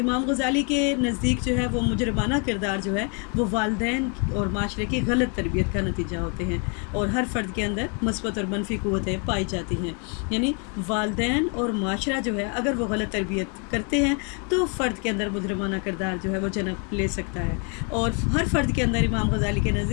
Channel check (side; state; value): right; quieter; 36.9 dB